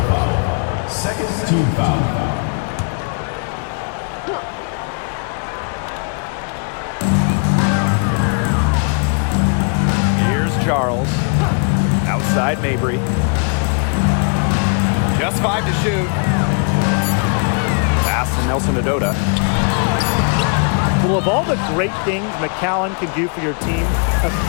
foul. Second team foul. Charles. Outside Mabry. Just 5 to shoot. Pass to Nelson Adota. Well, of all the great things McCallum can do for your team,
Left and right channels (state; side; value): quieter; right; 39.8 dB